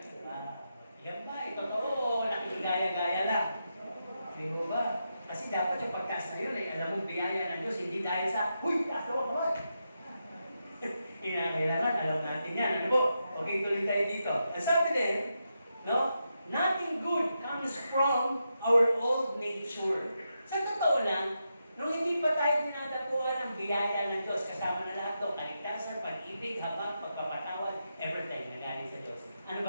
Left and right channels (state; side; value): inverted; both; correlation -0.86